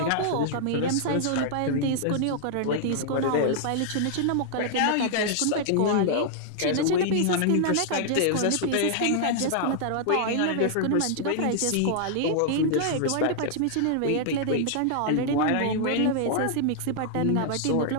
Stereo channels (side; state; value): both; different; correlation -0.01